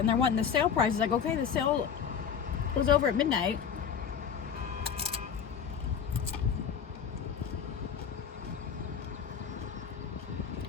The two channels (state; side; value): quieter; right; 7.4 dB